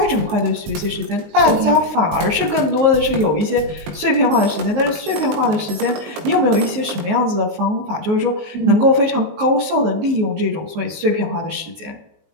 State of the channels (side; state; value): left; late; 19 ms